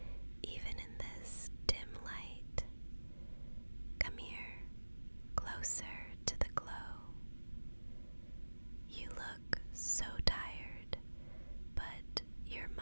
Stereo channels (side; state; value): both; inverted; correlation -1.00